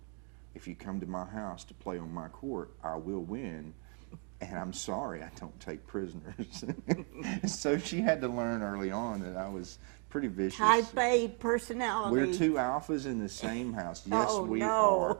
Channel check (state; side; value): quieter; left; 39.5 dB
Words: If you come to my house to play on my court, I will win. And I'm sorry, I don't take prisoners. So she had to learn early on that I was pretty vicious. Type A personality. We're 2 alphas in the same house. Yes, we no.